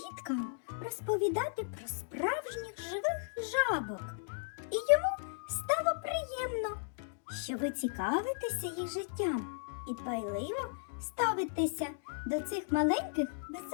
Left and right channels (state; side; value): silent; right; digital silence